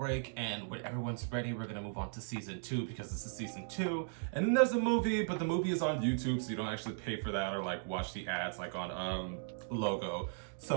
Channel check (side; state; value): left; silent; digital silence